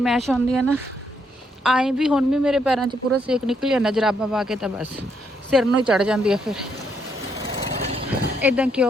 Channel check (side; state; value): both; normal; correlation 0.75